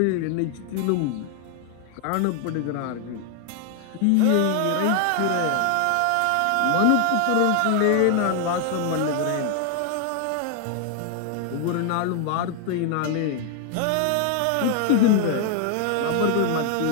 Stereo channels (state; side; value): different; both; correlation 0.00